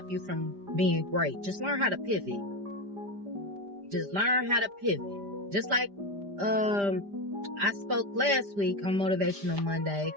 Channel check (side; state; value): left; late; 5.0 ms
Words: you from being great. Just learn how to pivot. Just learn how to pivot. Just like I spoke last week on Motivational Monday.